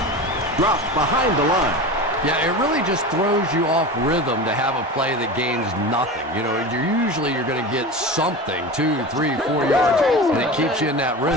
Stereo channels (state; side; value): normal; both; correlation 0.29